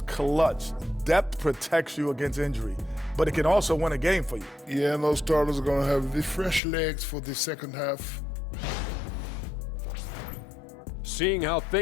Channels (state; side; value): drops out; right; at 6.6 s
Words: clutch. Depth protects you against injury, but it can also win a game for you. Yeah, and those starters are going to have the fresh legs for the second half. Seeing how